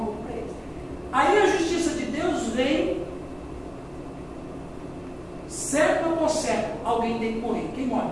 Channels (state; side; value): identical; both; correlation 1.00